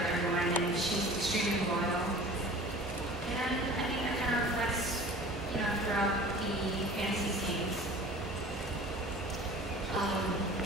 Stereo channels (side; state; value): both; normal; correlation 0.43